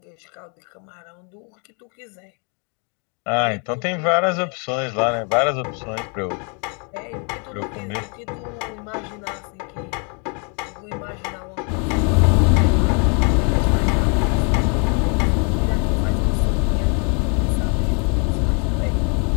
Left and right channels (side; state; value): right; quieter; 37.1 dB